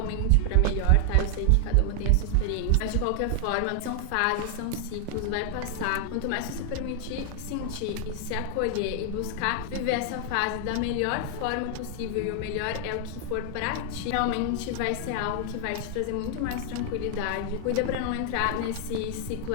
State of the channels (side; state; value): both; different; correlation 0.00